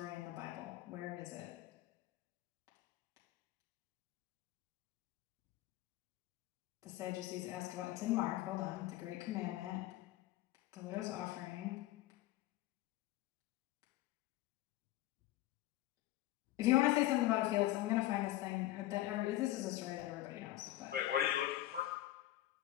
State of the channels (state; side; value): quieter; right; 15.5 dB